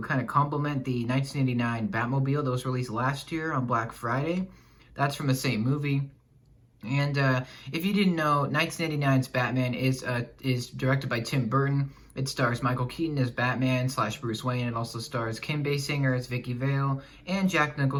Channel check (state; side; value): identical; both; correlation 1.00